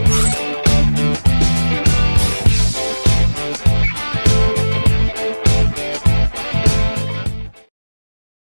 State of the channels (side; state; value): both; inverted; correlation -1.00